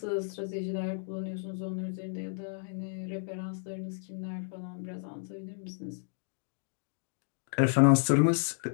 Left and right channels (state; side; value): silent; right; digital silence